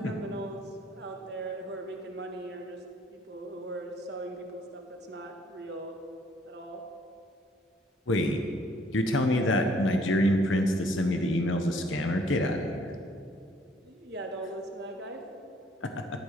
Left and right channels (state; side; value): normal; both; correlation 0.62